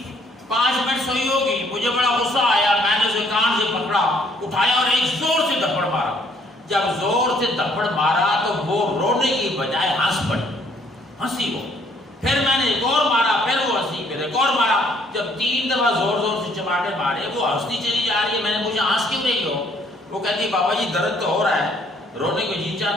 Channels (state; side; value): normal; both; correlation 0.64